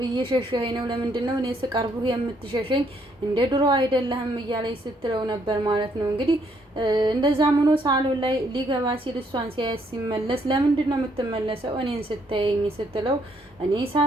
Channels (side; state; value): both; normal; correlation 0.70